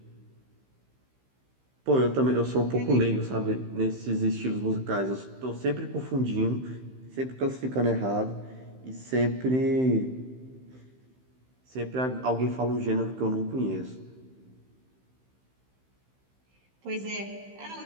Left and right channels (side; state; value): left; late; 15 ms